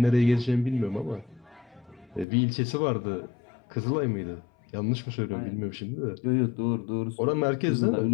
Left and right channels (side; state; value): right; drops out; at 2.2 s